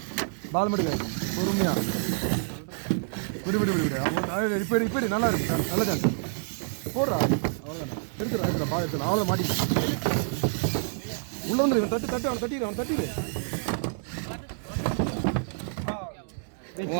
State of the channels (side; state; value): left; silent; digital silence